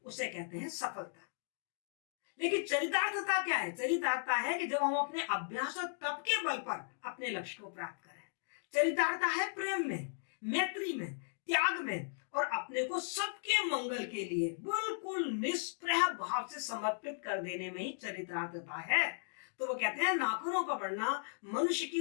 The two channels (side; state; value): right; silent; digital silence